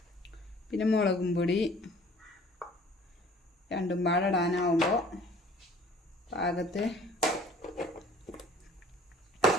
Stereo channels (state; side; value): normal; both; correlation 0.52